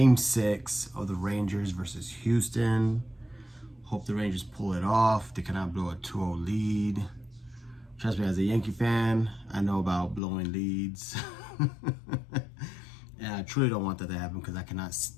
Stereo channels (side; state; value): right; drops out; at 10.2 s